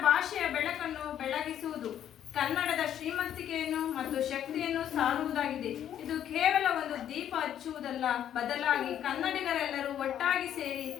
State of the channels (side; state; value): right; quieter; 10.3 dB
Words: ಭಾಷೆಯ ಬೆಳಕನ್ನು ಬೆಳಗಿಸುವುದು, ಕನ್ನಡದ ಶ್ರೀಮಂತಿಕೆಯನ್ನು ಮತ್ತು ಶಕ್ತಿಯನ್ನು ಸಾರುವುದಾಗಿದೆ. ಇದು ಕೇವಲ ಒಂದು ದೀಪ ಹಚ್ಚುವುದಲ್ಲ, ಬದಲಾಗಿ ಕನ್ನಡಿಗರೆಲ್ಲರೂ ಒಟ್ಟಾಗಿ ಸೇರಿ